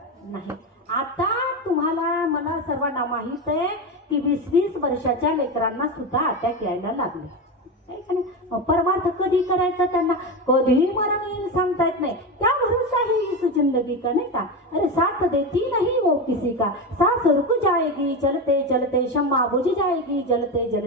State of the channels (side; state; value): both; normal; correlation 0.18